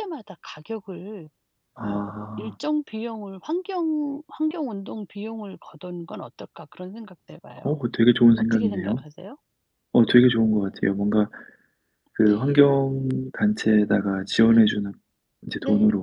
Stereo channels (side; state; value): both; identical; correlation 1.00